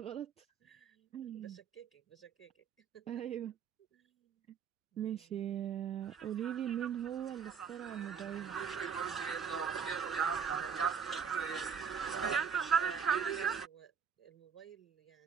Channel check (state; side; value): quieter; left; 7.0 dB